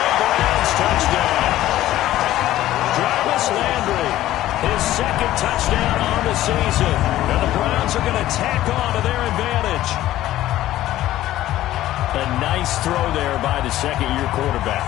Browns touchdown. Jarvis Landry, his second touchdown on the season. And the Browns are going to tack on to their advantage. A nice throw there by the second-year quarterback.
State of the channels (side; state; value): right; quieter; 14.4 dB